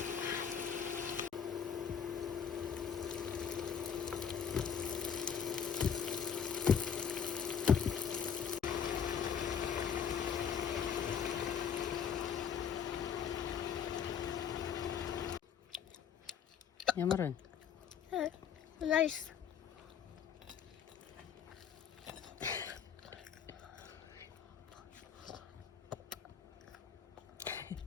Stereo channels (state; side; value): quieter; right; 7.8 dB